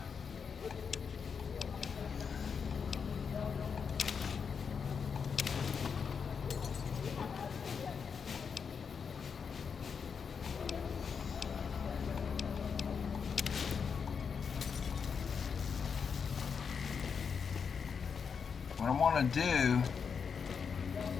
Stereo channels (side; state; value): right; quieter; 6.2 dB